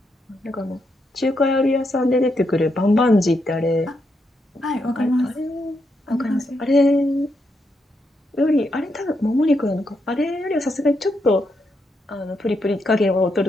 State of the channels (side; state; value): both; normal; correlation 0.81